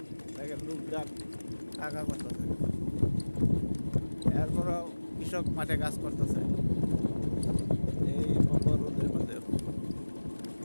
দেখেন লোকজন টাকা করতেছে, এরপরও কৃষক মাঠে কাজ করতেছে এই প্রখর রোদের মধ্যে।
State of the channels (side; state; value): both; inverted; correlation -1.00